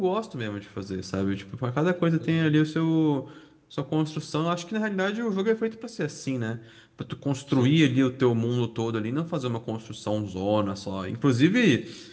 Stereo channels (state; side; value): identical; both; correlation 1.00